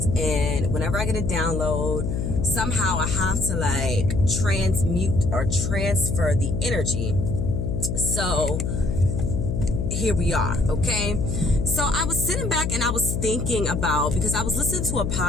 and whenever I get a download, somehow I have to transmute or transfer the energy. So here we are, okay? So I was sitting back and I was thinking about, because I was listening to a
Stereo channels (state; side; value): noise; left; hum, 1 dB below the sound